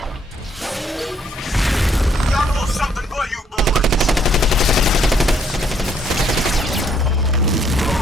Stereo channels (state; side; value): normal; both; correlation 0.68